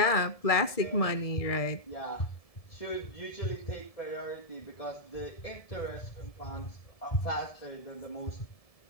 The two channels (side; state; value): right; late; 1.7 ms